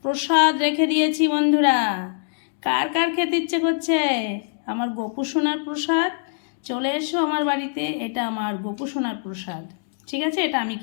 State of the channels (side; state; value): right; silent; digital silence